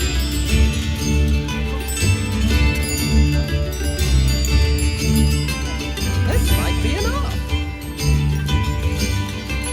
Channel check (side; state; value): both; identical; correlation 1.00